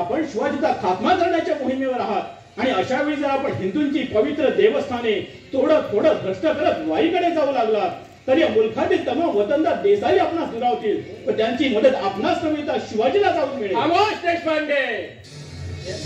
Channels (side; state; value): both; identical; correlation 1.00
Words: शिवाजीचा खात्मा करण्याच्या मोहिमेवर आहात आणि अशा वेळी जर आपण हिंदूंची पवित्र देवस्थाने तोडत फोडत भ्रष्ट करत वाईकडे जाऊ लागला तर या मुलखातील तमाम वतनदार देसाई आपणास दुरावतील व त्यांची मदत आपणास नव्हे तर शिवाजीला जाऊन मिळेल. खामोश देशपांडे,